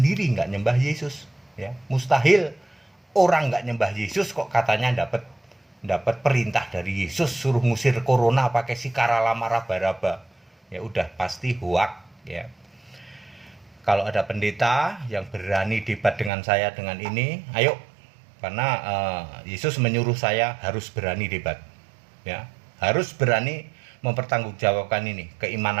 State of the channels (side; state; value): left; drops out; at 16.3 s